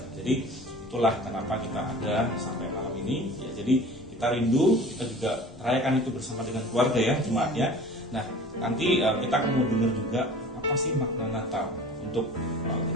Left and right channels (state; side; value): normal; both; correlation 0.42